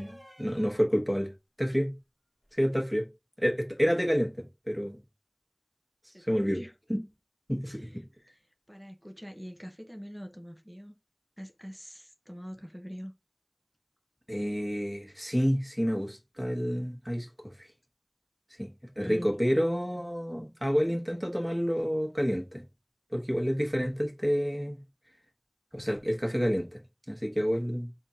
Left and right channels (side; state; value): both; identical; correlation 1.00